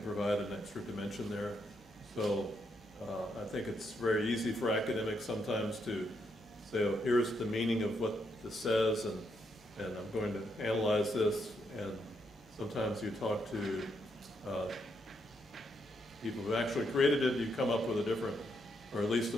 provide an extra dimension there. So I think it's very easy for academics sometimes to say, oh, here's the meaning of what this says, and I'm going to analyze this, and sometimes you talk to people who actually created it, you come up with a different, or at least a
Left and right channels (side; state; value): both; normal; correlation 0.78